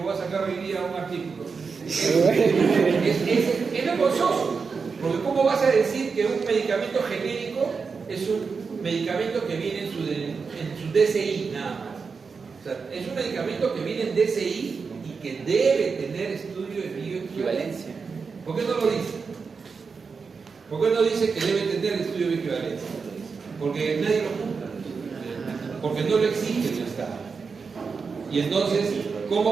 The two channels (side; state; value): left; quieter; 5.1 dB